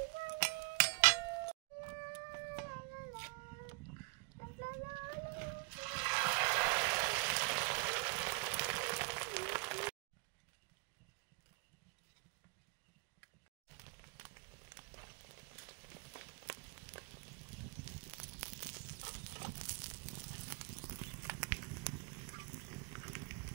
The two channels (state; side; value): quieter; left; 30.0 dB